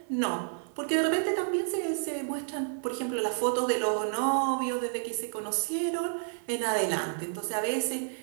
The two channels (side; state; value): left; silent; 58 dB below the other